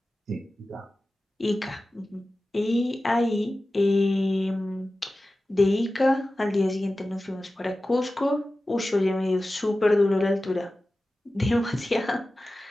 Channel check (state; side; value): normal; both; correlation 0.95